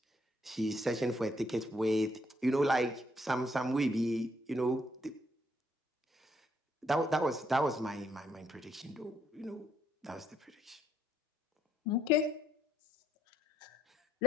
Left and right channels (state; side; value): normal; both; correlation 0.72